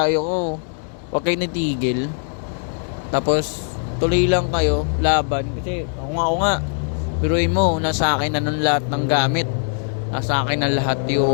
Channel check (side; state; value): right; silent; 58 dB below the other